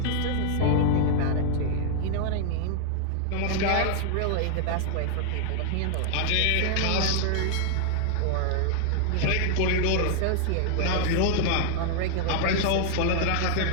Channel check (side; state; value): both; different; correlation 0.00